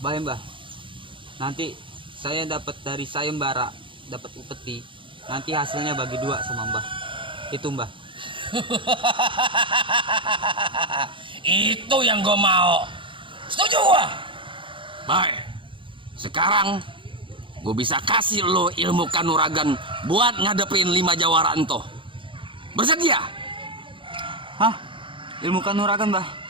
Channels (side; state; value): left; late; 0.25 ms